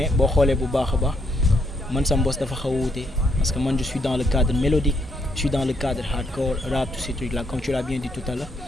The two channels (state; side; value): normal; both; correlation 0.74